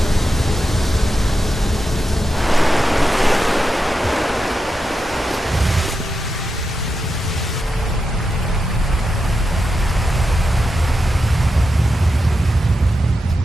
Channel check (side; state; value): both; normal; correlation 0.88